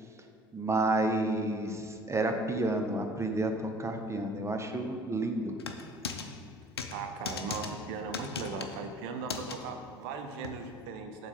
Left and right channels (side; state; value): both; normal; correlation 0.49